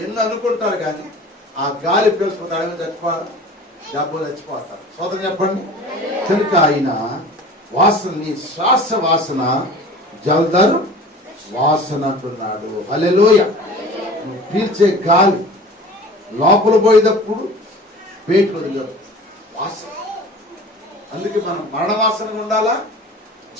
ఎన్ని అనుకుంటారు కానీ ఆ గాలి పీల్చుకుంటారు, చచ్చిపోతారు. స్తోత్రం చెప్పండి. కనుక ఆయన వాసన, నీ శ్వాస వాసన జలధర్ వాసన అంటున్నాడు. హల్లెలూయా. నువ్వు పీల్చే గాలి లోపల పోయేటప్పుడు పేటు వదిలేదు వాసన. అందుకే మనం మరణ వాసనగా ఉండాలా,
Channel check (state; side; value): normal; both; correlation 0.41